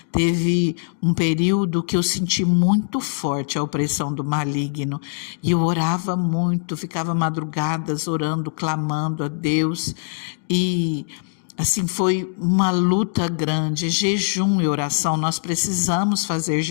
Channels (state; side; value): silent; right; digital silence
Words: Teve um período que eu senti muito forte a opressão do maligno. E eu orava muito, ficava madrugadas orando, clamando a Deus. E assim, foi uma luta grande, jejum e oração. Nós precisamos fazer